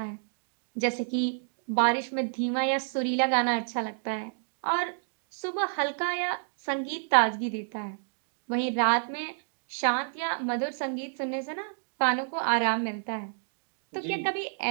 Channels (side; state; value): left; silent; digital silence